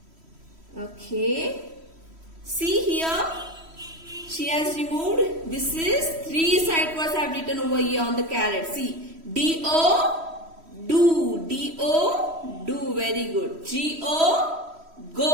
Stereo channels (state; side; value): late; left; 3.1 ms